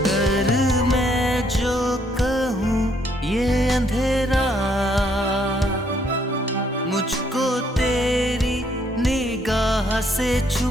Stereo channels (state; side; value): normal; both; correlation 0.69